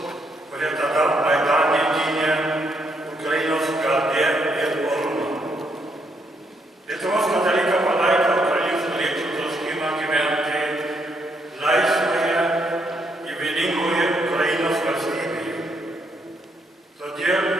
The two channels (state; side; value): normal; both; correlation 0.75